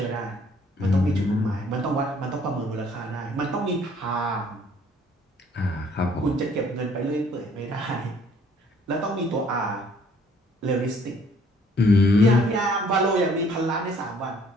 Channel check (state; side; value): normal; both; correlation 0.59